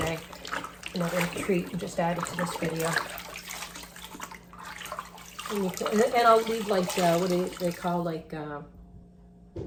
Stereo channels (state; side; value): identical; both; correlation 1.00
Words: Another treat and just add it to this video. And I'll leave like, what do they call, like,